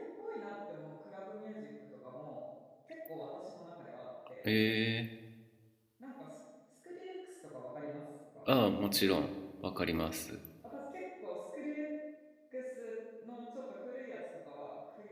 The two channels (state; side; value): identical; both; correlation 1.00